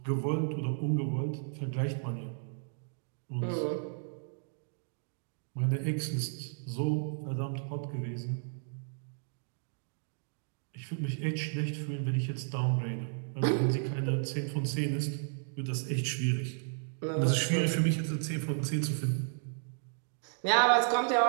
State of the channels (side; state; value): left; silent; digital silence